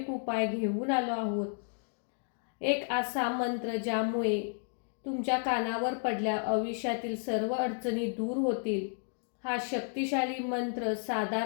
उपाय घेऊन आलो आहोत. एक असा मंत्र ज्यामुळे तुमच्या कानावर पडल्या आयुष्यातील सर्व अडचणी दूर होतील. हा शक्तिशाली मंत्र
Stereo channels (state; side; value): silent; right; 56 dB below the other